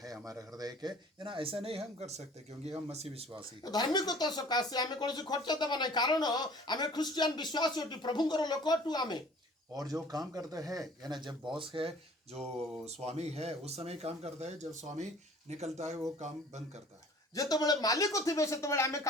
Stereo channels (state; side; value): normal; both; correlation 0.49